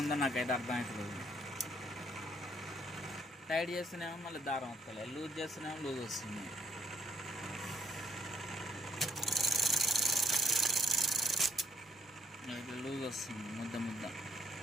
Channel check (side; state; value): both; normal; correlation 0.67